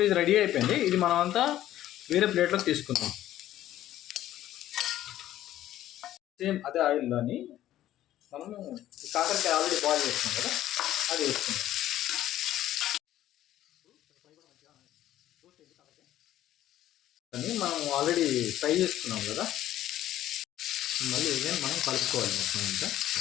ఇది రెడీ అయిపోయింది. ఇది మనం అంతా వేరే ప్లేట్లోకి తీసుకుందాం. సేమ్ అదే ఆయిల్లోని మనము కాకరకాయ ఆల్రెడీ బాయిల్ చేసుకున్నాం కదా, అది వేసుకుందాం. కానీ మనం ఆల్రెడీ ఫ్రై చేసుకున్నాం కదా, మళ్ళీ ఇదే మనం కలుపుకోవాలి మొత్తం అంతా.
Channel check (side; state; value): right; quieter; 13.2 dB